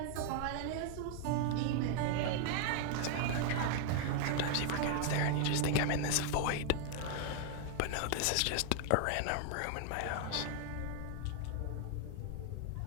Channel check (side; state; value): both; different; correlation 0.00